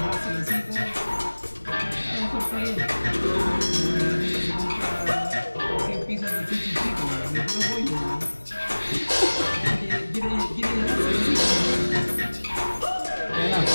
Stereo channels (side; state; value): both; inverted; correlation -1.00